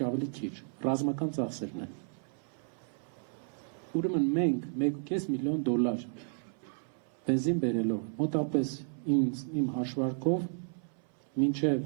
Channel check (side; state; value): left; silent; 56 dB below the other